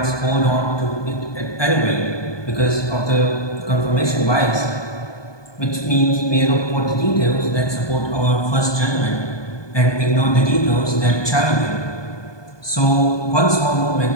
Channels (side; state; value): right; late; 1.2 ms